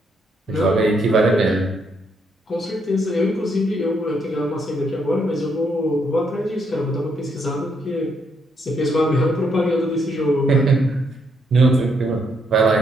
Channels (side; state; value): both; normal; correlation 0.74